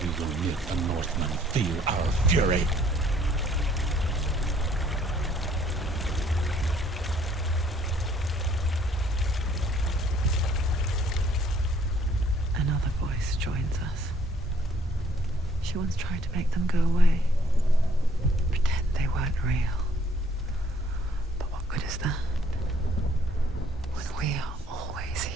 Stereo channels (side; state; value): both; normal; correlation 0.62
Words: we will make the Northmen feel our fury. Another voice joins us. She once tried to make them go away. Pretend they weren't real. But what good is that? When we are always